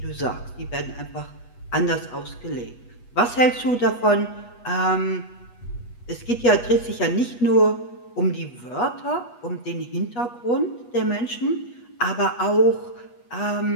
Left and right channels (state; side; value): late; right; 8.3 ms